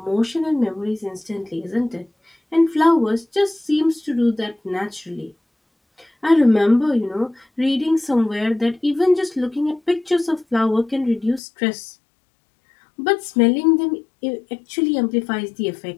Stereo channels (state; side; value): drops out; right; at 11.4 s